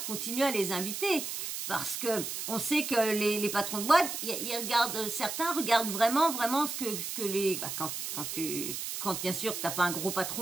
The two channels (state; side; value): noise; right; hiss, 5 dB below the sound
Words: continuent à les inviter. Parce que on sait que les patrons de boîte, ils regardent, certains regardent vraiment ce que les, quand bien sûr t'as pas un gros